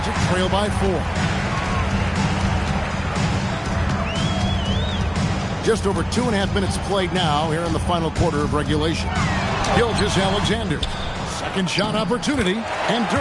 trail by 4. Just over 2.5 minutes played now here in the final quarter of regulation. Gilgeous-Alexander. Second shot opportunity. And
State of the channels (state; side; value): identical; both; correlation 1.00